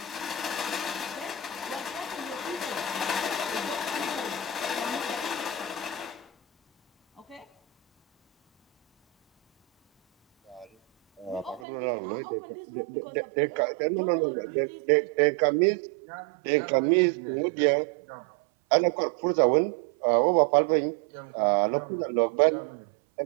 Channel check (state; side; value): drops out; left; at 11.7 s